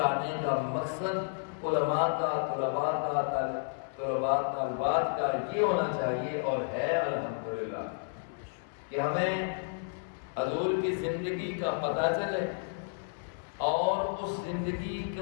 کا مقصد علماء کا، طلباء کا، طلباء طالبات کا یہ ہونا چاہیے اور ہے الحمدللہ، کہ ہمیں حضور کی زندگی کا پتہ چلے، اور اس زندگی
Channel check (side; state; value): right; silent; 57 dB below the other